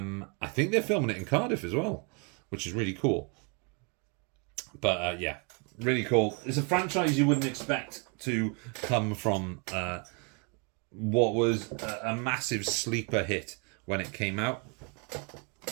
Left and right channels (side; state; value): left; quieter; 34.0 dB